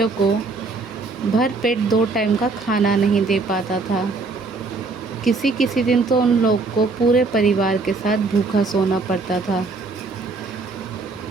को भर पेट 2 टाइम का खाना नहीं दे पाता था। किसी किसी दिन तो उन लोग को पूरे परिवार के साथ भूखा सोना पड़ता था,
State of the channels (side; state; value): left; quieter; 3.9 dB